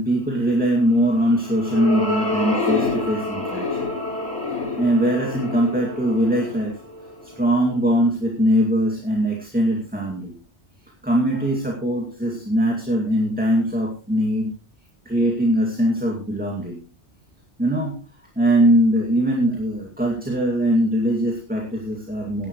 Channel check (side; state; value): both; normal; correlation 0.55